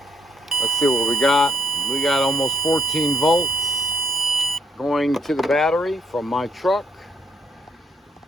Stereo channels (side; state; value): both; normal; correlation 0.74